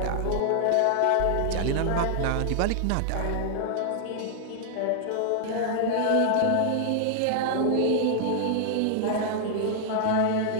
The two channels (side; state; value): both; different; correlation 0.00